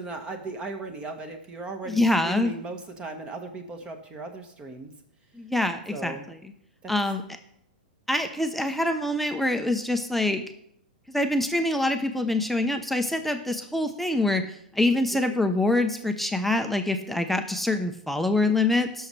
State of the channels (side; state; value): both; normal; correlation 0.72